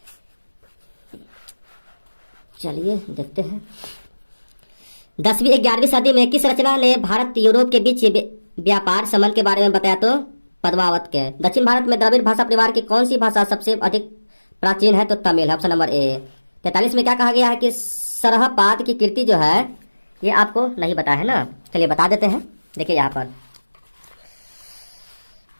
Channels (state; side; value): inverted; both; correlation -1.00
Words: चलिए देखते हैं 10वीं 11वीं सदी में किस रचना ने भारत यूरोप के बीच व्यापार संबंध के बारे में बताया? तो पद्मावत के। दक्षिण भारत में द्रविड़ भाषा परिवार की कौन सी भाषा सबसे अधिक प्राचीन है? तो तमिल है। Option number A. 43 में क्या कहा गया है कि सरहपाद की कृति जो है ये आपको नहीं बताया है ना। चलिए बता देते हैं। देखिए यहाँ पर